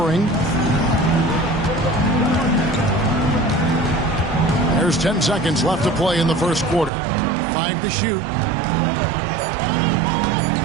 There's 10 seconds left to play in the first quarter. 5 to shoot.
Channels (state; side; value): drops out; left; at 6.9 s